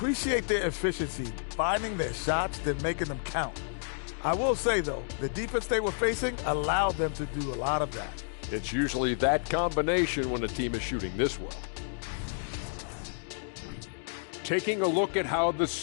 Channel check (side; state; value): right; silent; digital silence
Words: their efficiency, finding their shots, then making them count. I will say, though, the defense they were facing allowed them to do a lot of that. It's usually that combination when a team is shooting this well. Taking a look at how the